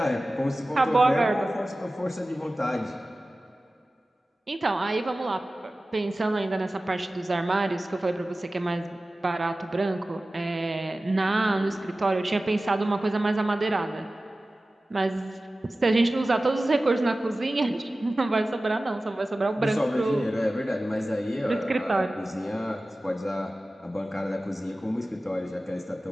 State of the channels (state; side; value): normal; both; correlation 0.96